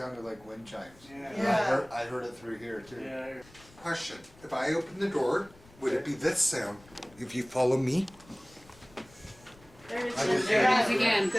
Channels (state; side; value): noise; left; rumble, 25 dB below the sound